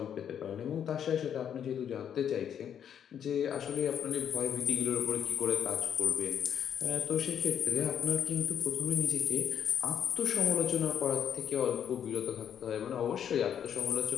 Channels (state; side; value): quieter; right; 8.8 dB